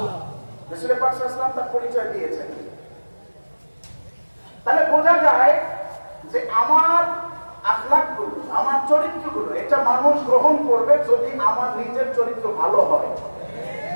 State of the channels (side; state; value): both; inverted; correlation -1.00